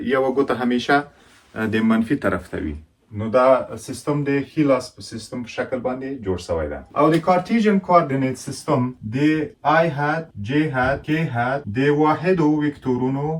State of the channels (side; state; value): both; identical; correlation 1.00